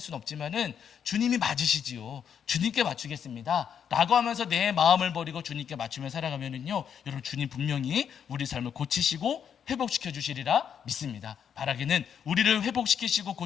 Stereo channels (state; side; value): quieter; right; 8.1 dB